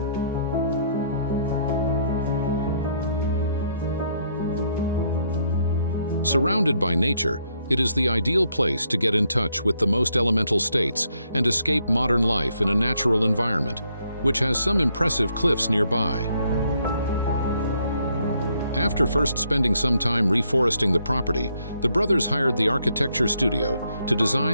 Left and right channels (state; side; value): inverted; both; correlation -0.72